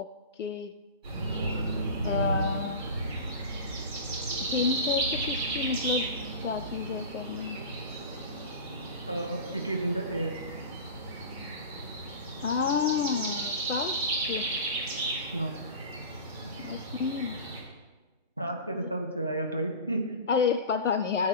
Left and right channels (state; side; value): inverted; both; correlation -0.31